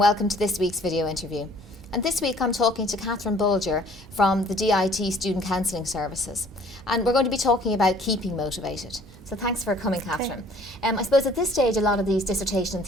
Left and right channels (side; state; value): both; normal; correlation 0.55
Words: to this week's video interview. And this week I'm talking to Catherine Bolger from the DIT Student Counselling Services. And we're going to be talking about keeping motivated. So thanks for coming, Catherine. I suppose at this stage a lot of these dissertation and